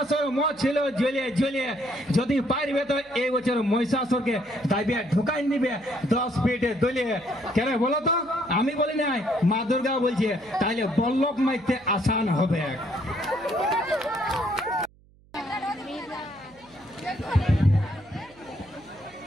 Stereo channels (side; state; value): right; noise; hum, 29 dB below the sound